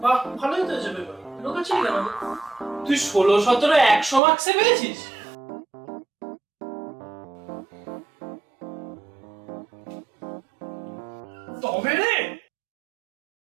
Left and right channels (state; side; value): drops out; left; at 4.2 s